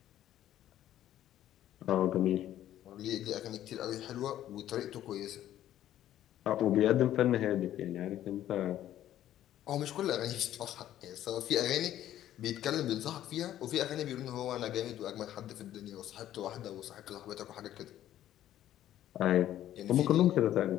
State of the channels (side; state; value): right; quieter; 12.3 dB